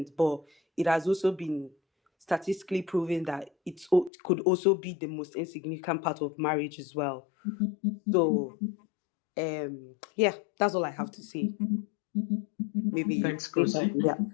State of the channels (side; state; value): right; drops out; at 4.1 s